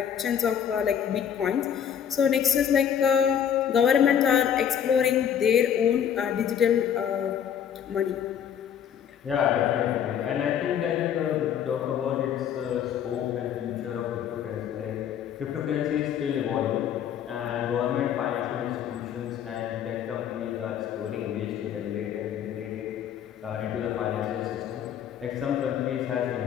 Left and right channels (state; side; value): quieter; right; 8.9 dB